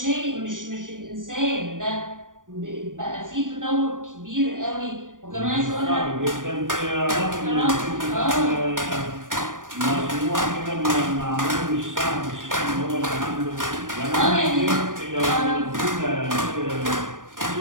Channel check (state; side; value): late; left; 0.88 ms